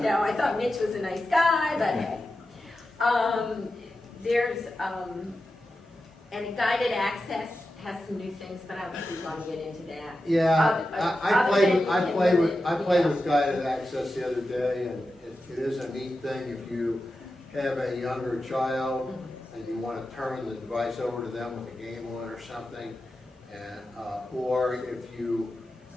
know. I thought Mitch was a nice guy, but hey. There's, and a guided access has some new things, but I don't think we want to get into that. Yeah, I played with yeah. guided access the other day, and it is a neat thing if you have a younger child and you want to turn the device over to them with a game on or something, and or if you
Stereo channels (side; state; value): both; normal; correlation 0.92